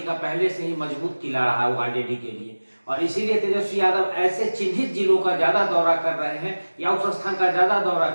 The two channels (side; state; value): both; inverted; correlation -1.00